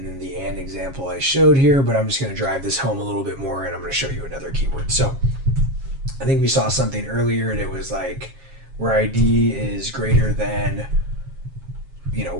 then the and example I showed here, but I'm just going to drive this home a little bit more and I'm going to show you another keyword. So I think we saw something earlier and it was like where ID is greater than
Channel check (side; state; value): left; late; 7.4 ms